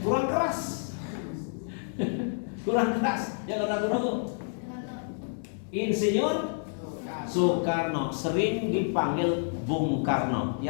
Kurang keras. Kurang keras. Jangan ragu-ragu. Insinyur Soekarno, sering dipanggil Bung Karno.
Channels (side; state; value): right; silent; digital silence